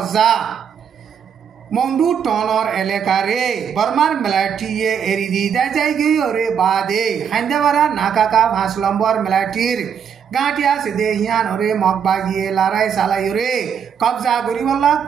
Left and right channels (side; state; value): left; quieter; 7.6 dB